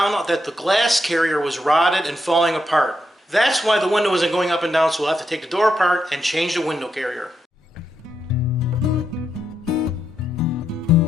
out that the glass carrier was rotted and falling apart. That's why the window isn't going up and down, so we'll have to take the door apart and change the window carrier.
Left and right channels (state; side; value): normal; both; correlation 0.82